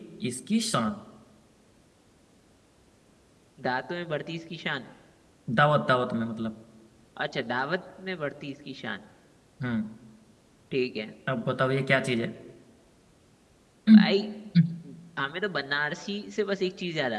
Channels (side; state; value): both; identical; correlation 1.00